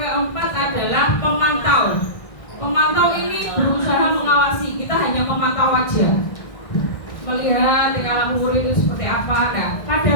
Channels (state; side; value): late; right; 1.6 ms